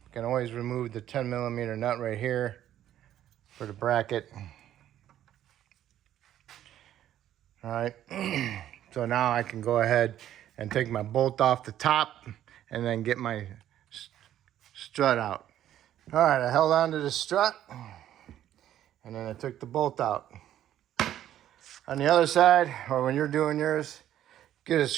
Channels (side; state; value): left; quieter; 11.7 dB